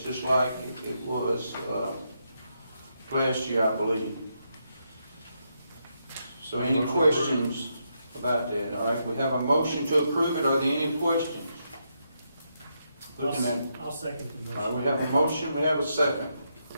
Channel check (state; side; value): inverted; both; correlation -0.81